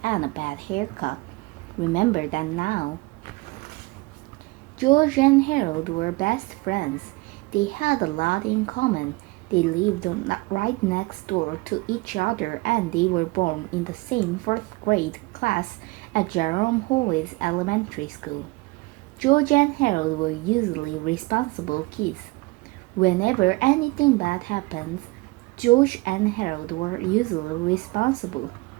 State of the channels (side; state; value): left; quieter; 23.6 dB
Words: and a bad haircut. Remember that now. George and Harold were best friends. They had a lot in common. They lived right next door to each other and they were born in the same fourth grade class at Jerome Hallway's elementary school. George and Harold were usually responsible kids. Whenever anything bad happens, George and Harold were usually responsible.